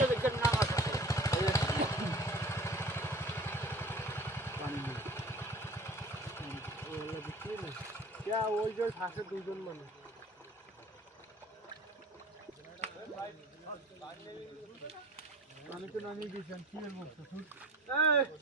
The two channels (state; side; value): normal; both; correlation 0.43